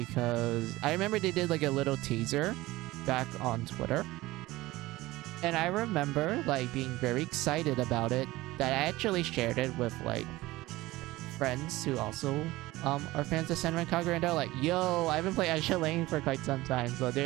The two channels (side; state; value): left; quieter; 18.8 dB